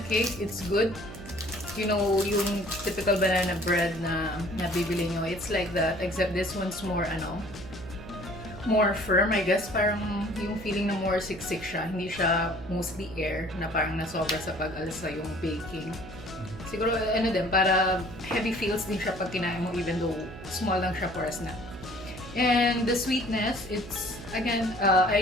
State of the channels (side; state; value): right; noise; hum, 14 dB below the sound